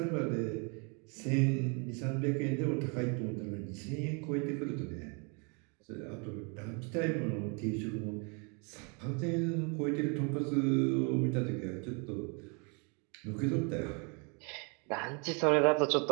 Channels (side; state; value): left; quieter; 34.7 dB